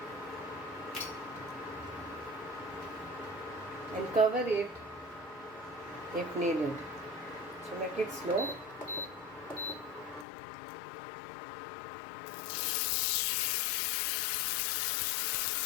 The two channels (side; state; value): right; drops out; at 10.2 s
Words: And cover it if needed. So make it slow.